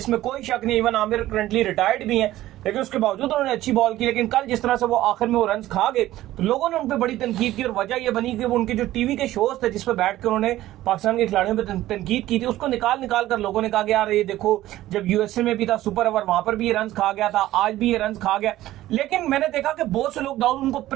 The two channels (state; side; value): quieter; left; 15.0 dB